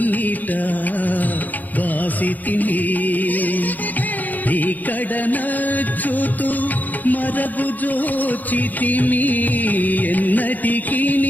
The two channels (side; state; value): right; late; 0.082 ms